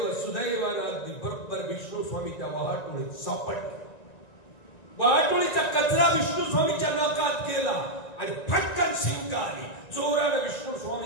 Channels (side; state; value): right; late; 1.9 ms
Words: सुदैवानं अगदी बरोबर विष्णू स्वामी त्या वाहतुळीत सापडले. वाहतुळीचा कचरा विष्णू स्वामीच्या नाकात गेला आणि फटकन शिंक आली. जोरानं विष्णू